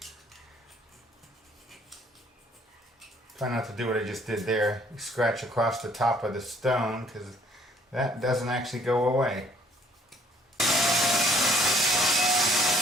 Try not to do what I just did there. Scratch across the top of the stone, because that doesn't actually go away.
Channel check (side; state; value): both; normal; correlation 0.60